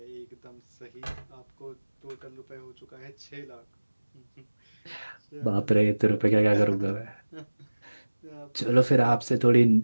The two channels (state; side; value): inverted; both; correlation -1.00